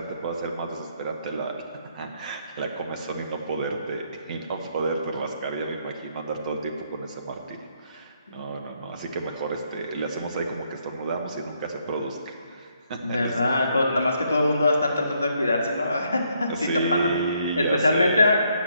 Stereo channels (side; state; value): both; inverted; correlation -0.73